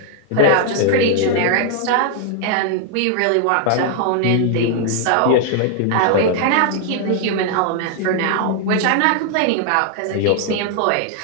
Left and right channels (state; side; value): different; both; correlation 0.00